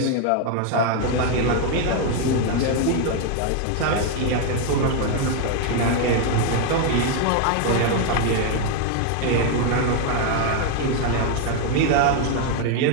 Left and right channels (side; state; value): both; different; correlation 0.01